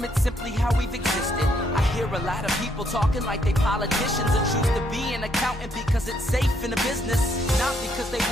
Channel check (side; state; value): both; normal; correlation 0.72